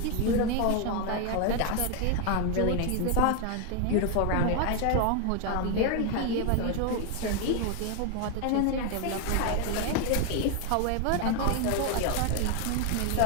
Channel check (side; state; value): both; different; correlation 0.01